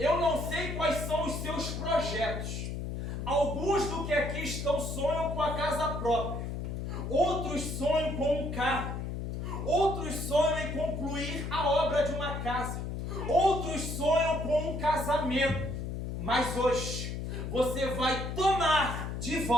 não sei quais são os seus projetos. Alguns do que aqui estão sonham com a casa própria. Outros sonham com um carro. Outros sonham em concluir a obra de uma casa. Outros sonham com um casamento. Mas hoje você vai tomar de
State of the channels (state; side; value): noise; left; hum, 4 dB below the sound